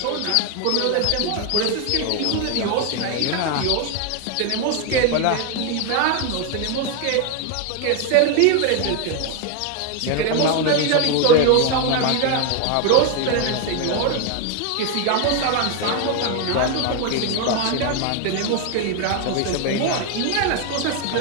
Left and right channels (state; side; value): different; both; correlation 0.01